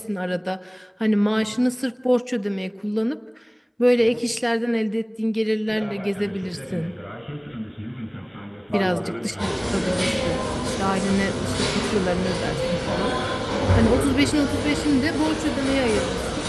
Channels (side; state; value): both; identical; correlation 1.00